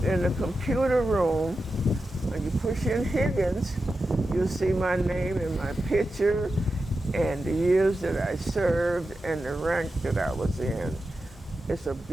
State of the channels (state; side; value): normal; both; correlation 0.91